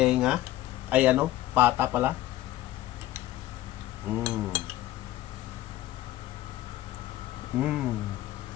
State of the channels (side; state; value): right; quieter; 14.9 dB